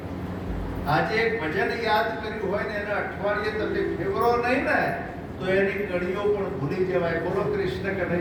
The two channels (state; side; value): identical; both; correlation 1.00